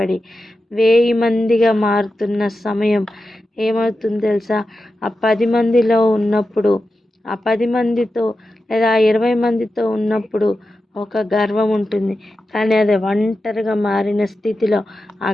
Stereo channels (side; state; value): both; normal; correlation 0.91